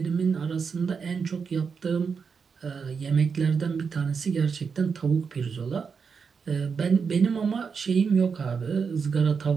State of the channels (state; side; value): quieter; left; 5.8 dB